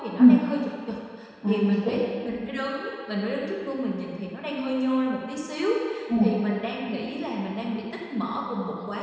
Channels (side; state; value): both; identical; correlation 1.00